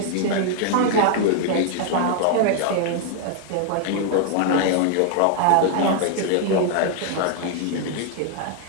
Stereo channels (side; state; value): both; different; correlation 0.00